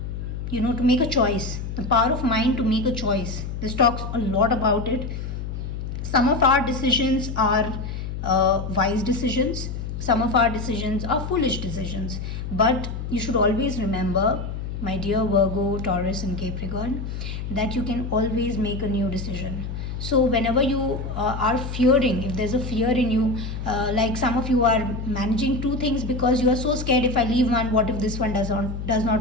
make a choice. The power of mind to make a choice. This talks a lot about it. Some of our decisions are wise decisions. Some of our decisions are foolish decisions. But you should always remember, my dear Virgo, Taurus and Capricorn, that you can always make a new decision. So whenever you are fearing, if there's a fear in you, like some of you are managing two things because you are so scared, if I leave one, what if this one does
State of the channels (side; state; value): left; noise; hum, 6 dB below the sound